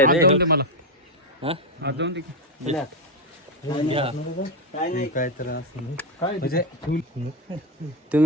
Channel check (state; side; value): normal; both; correlation 0.07